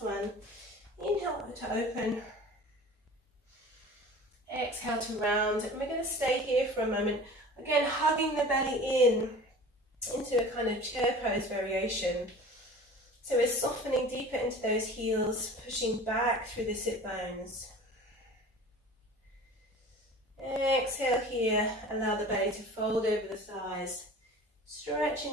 one. Inhale to open. Exhale to round. And we're going to stay here for a moment. Again, hugging the belly in into a kind of chair pose variation. So we're softening deeper into those heels, pushing back through the sit bones. Exhale here, allow the belly to fold over the thighs,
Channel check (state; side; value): normal; both; correlation 0.40